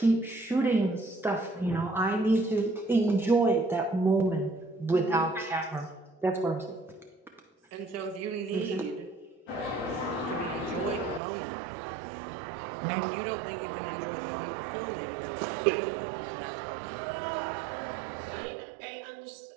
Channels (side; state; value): left; drops out; at 11.2 s